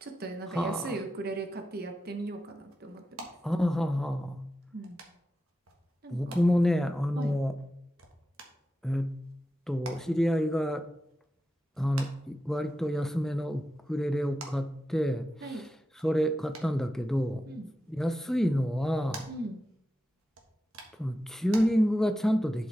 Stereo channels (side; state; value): both; normal; correlation 0.91